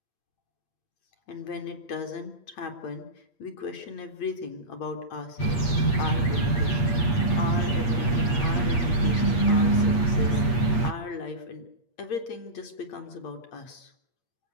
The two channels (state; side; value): late; right; 8.4 ms